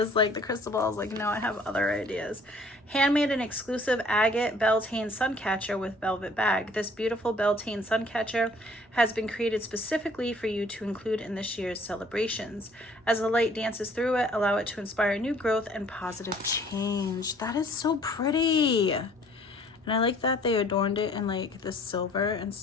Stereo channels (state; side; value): normal; both; correlation 0.56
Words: like, the crystal ball is like, no, I have other ideas. Handmade and exclusive agate Beltane suncatcher with velvet bag. This beautiful Beltane suncatcher has been created specifically for you to include in this year's celebrations. As the light dances through it, allow it to inspire new growth and positive change. That is so pretty. And I like that they adorned it in like the silver